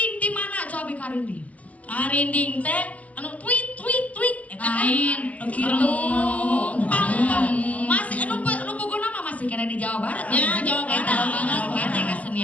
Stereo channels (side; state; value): right; late; 0.069 ms